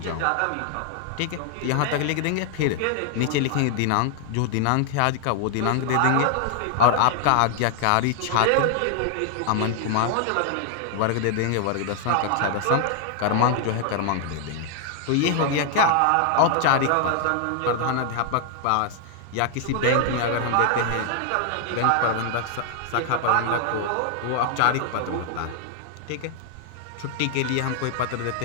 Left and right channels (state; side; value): different; both; correlation 0.00